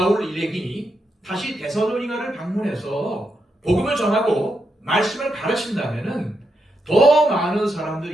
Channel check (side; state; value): both; normal; correlation 0.83